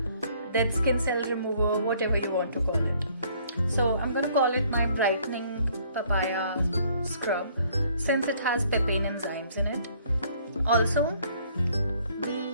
dead skin cell remover, whatever you want to call it. So I'm going to call it my brightening papaya scrub since it has papain enzymes in it. Also, the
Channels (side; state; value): both; inverted; correlation -0.61